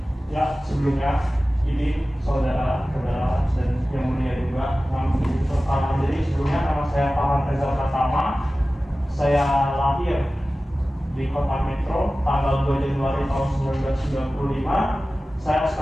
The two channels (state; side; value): normal; both; correlation 0.96